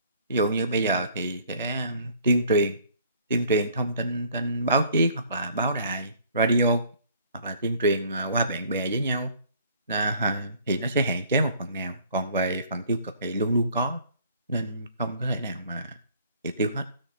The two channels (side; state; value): both; inverted; correlation -0.56